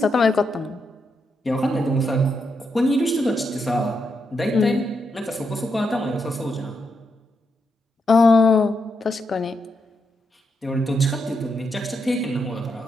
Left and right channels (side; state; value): both; normal; correlation 0.82